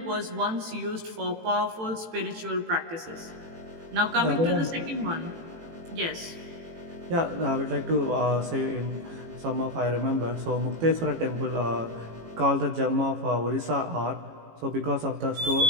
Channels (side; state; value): left; late; 18 ms